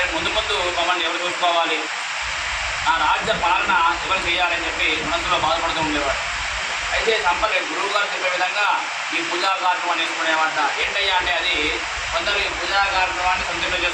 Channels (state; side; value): identical; both; correlation 1.00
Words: ముందు ముందు మమ్మల్ని ఎవరు చూసుకోవాలి, నా రాజ్య పాలన ఎవరు చేయాలని చెప్పి మనసులో బాధపడుతూ ఉండేవాడు. అయితే సంపలేదు గురువు గారు చెప్పే విధంగా ఈ పూజా కార్యక్రమాన్ని చేసుకునేవాట. ఏంటయ్యా అంటే అది కొందరు ఈ పూజా కార్యక్రమాన్ని సొంత ఇంట్లో